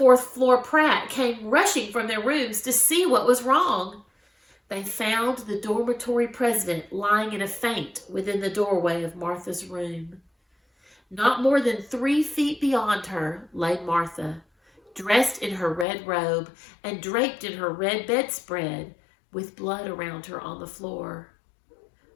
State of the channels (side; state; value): right; drops out; at 15.9 s